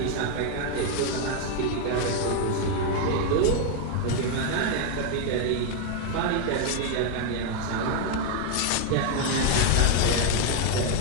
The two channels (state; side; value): different; both; correlation 0.01